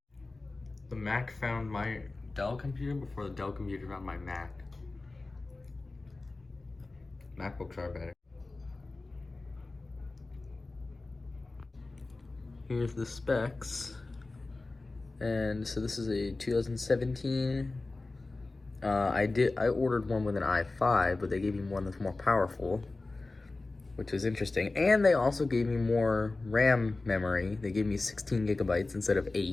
The Mac found my Dell computer before the Dell computer found my Mac. MacBooks are better. Here's the specs. And so this is a 2017. I ordered one with an i5, but they gave me one that's more powerful, which was interesting. And they also gave me more RAM memory. They gave me 16 gigabytes instead of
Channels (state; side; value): quieter; right; 3.3 dB